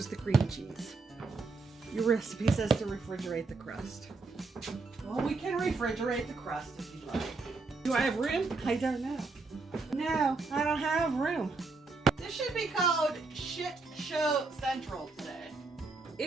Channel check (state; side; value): quieter; left; 3.9 dB